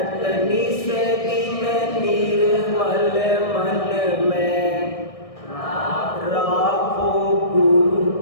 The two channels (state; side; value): late; right; 1.6 ms